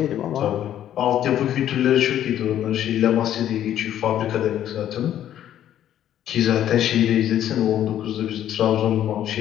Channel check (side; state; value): right; quieter; 11.2 dB